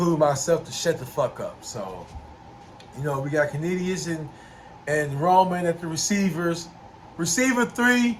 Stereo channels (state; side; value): identical; both; correlation 1.00